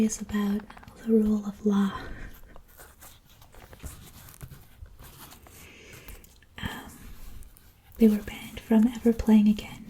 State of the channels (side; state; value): both; identical; correlation 1.00